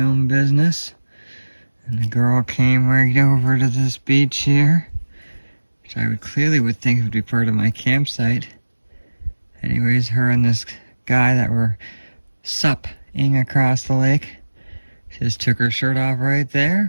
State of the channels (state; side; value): inverted; both; correlation -1.00